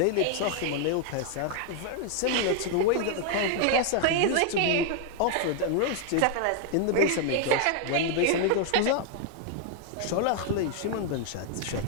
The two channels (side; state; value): both; different; correlation 0.00